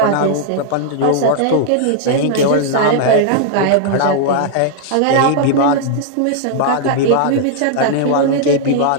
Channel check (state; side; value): different; both; correlation -0.01